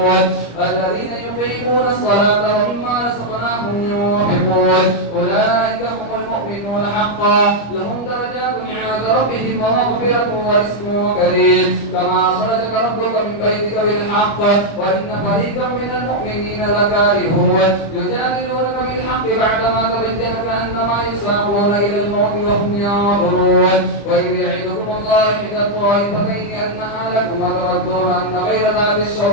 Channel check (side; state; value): right; late; 25 ms